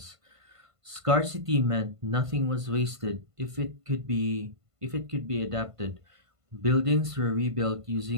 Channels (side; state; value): left; late; 1.5 ms